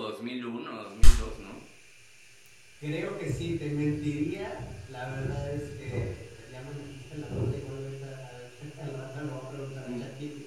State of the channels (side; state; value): both; identical; correlation 1.00